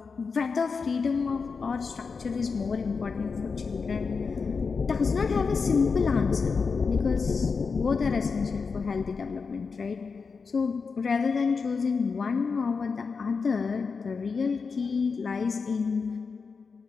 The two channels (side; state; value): right; quieter; 5.1 dB